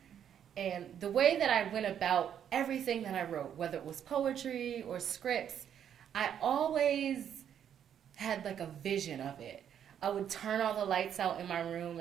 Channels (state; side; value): quieter; left; 9.1 dB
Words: And the way that I went about everything that I wrote, whether it was poetry or scripts, I always had like a vision of it. I would turn all the lights out in my room